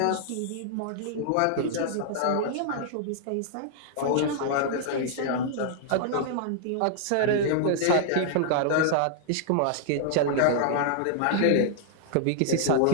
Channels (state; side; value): different; both; correlation -0.01